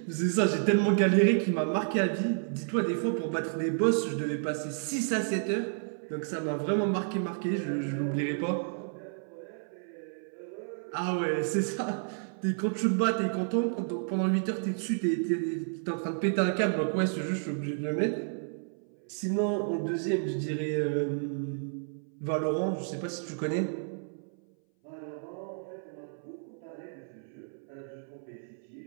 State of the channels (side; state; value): left; silent; 57 dB below the other